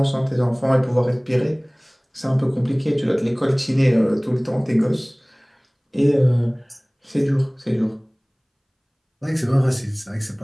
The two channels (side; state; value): both; identical; correlation 1.00